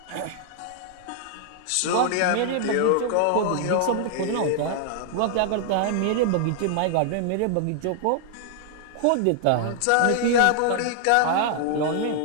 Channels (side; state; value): both; different; correlation -0.01